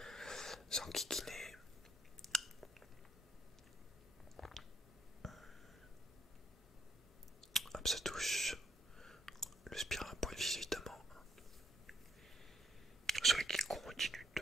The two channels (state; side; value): normal; both; correlation 0.74